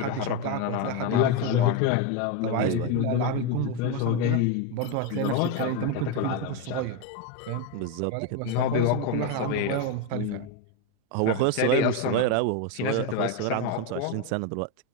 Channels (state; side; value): different; both; correlation 0.03